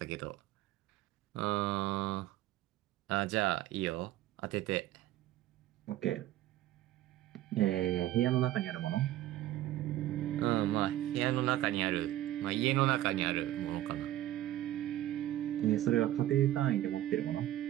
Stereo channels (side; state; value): left; quieter; 14.0 dB